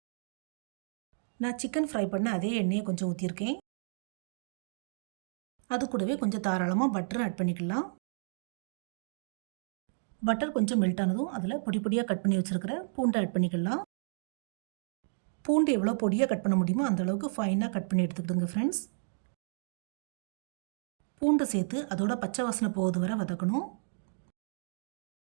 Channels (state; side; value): silent; left; digital silence